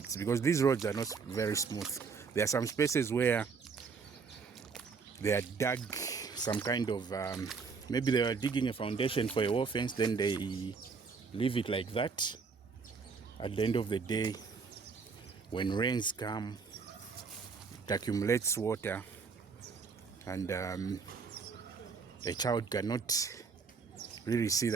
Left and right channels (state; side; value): quieter; left; 5.2 dB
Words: because these roads are not very smooth. There are some spaces where they are dug some kind of, maybe they are digging a foundation for a wall fence, then they leave it like that. At the end of the day, when rains come, it accumulates water, and a child cannot really see